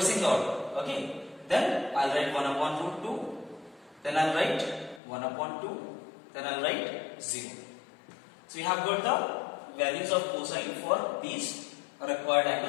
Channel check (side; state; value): right; drops out; at 5.0 s